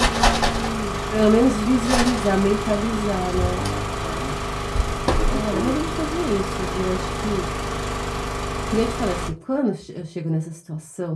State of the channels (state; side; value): identical; both; correlation 1.00